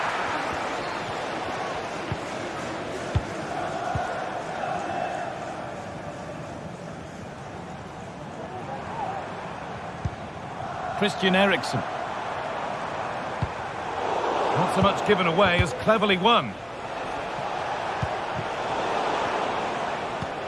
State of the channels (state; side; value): identical; both; correlation 1.00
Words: Christian Eriksen. Not so much given away as cleverly won.